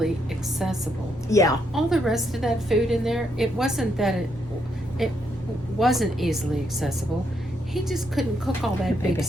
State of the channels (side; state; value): both; normal; correlation 0.77